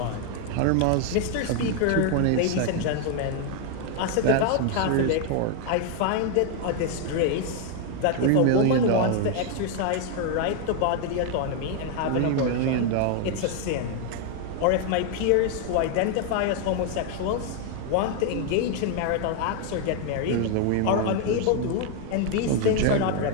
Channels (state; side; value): different; both; correlation 0.01